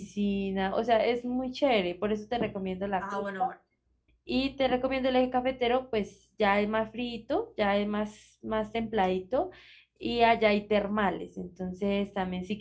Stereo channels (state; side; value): identical; both; correlation 1.00